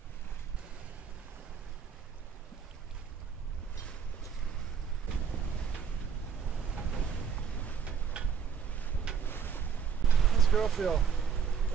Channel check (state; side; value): quieter; left; 7.0 dB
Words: How's the girl feel?